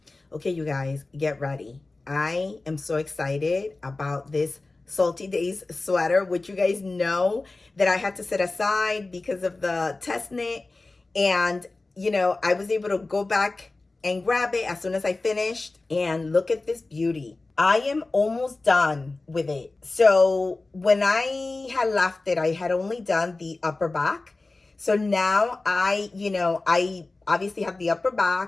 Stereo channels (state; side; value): quieter; right; 3.3 dB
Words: Okay, you guys, get ready. I am so excited about this Salty Days sweater, which you guys know that I had to set aside because of the test knit. And, you know, I was able to go back and grab it as soon as I finished. And look at this beauty. I am almost done with it. So when I had left it, I had only done the upper back. So now I obviously have the upper